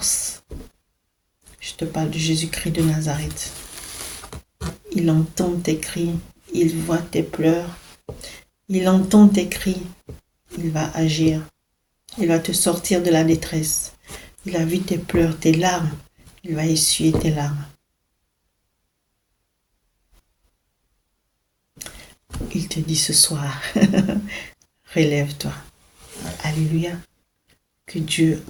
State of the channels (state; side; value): identical; both; correlation 1.00